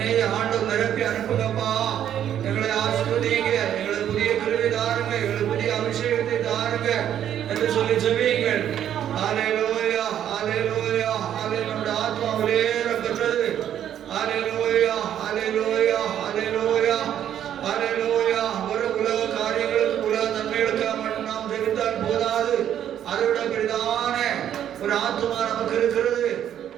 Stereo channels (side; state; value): left; quieter; 10.3 dB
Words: ஆண்டவர் நிரப்பி அனுப்புங்கப்பா. எங்களை ஆசீர்வதிங்க, எங்களுக்கு புதிய கிருபை தாருங்க, எங்களுக்கு புதிய அபிஷேகத்தை தாருங்க என்று சொல்லி ஜெபியுங்கள். ஹல்லேலூயா ஹல்லேலூயா ஹல்லேலூயா. நம்முடைய ஆத்மா விலையேற பெற்றது. ஹல்லேலூயா ஹல்லேலூயா ஹல்லேலூயா ஹல்லேலூயா. ஒரு உலக காரியங்களுக்கு உலக நன்மைகளுக்காக மட்டும் நாம் ஜெபித்தால் போதாது. அதோட பெரிதான ஒரு ஆத்மா நமக்கு இருக்கிறது.